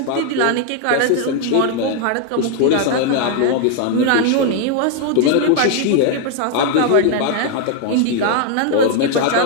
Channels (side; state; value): both; different; correlation 0.00